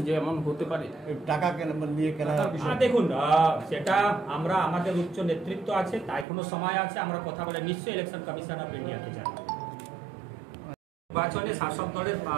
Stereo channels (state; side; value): drops out; left; at 6.2 s